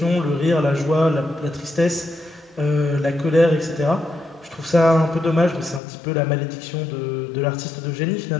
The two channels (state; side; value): drops out; right; at 5.8 s